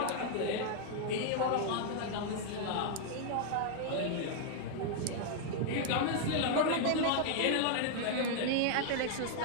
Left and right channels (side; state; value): both; different; correlation 0.00